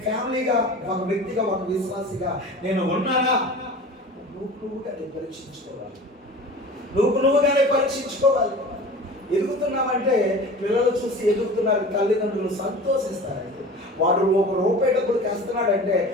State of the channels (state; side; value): normal; both; correlation 0.38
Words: ఫ్యామిలీగా, ఒక వ్యక్తిగా, ఒక విశ్వాసిగా నేను ఉన్నానా? నువ్వుగానే పరీక్షించుకోవాలి. నువ్వుగానే పరీక్షించుకోవాలి. ఎదుగుతున్నామంటే పిల్లలు చూసి ఎదుగుతున్నారు, తల్లిదండ్రులు సంతోషిస్తారండి. వాడు ₹1 డబ్బులు తెస్తున్నాడంటే